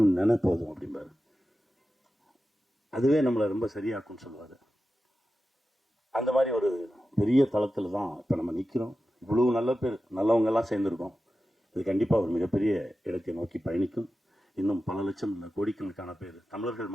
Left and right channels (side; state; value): both; normal; correlation 0.93